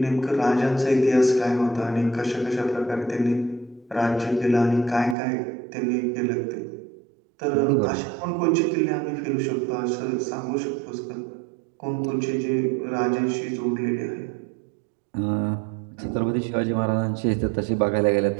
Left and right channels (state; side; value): drops out; left; at 5.2 s